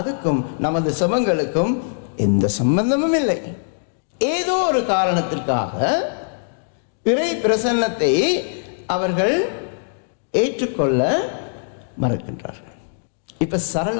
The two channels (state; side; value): silent; right; digital silence